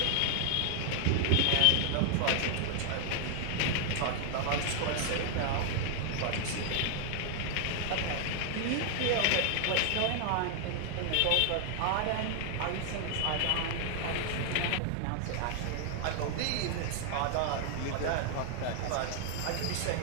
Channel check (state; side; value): different; both; correlation 0.00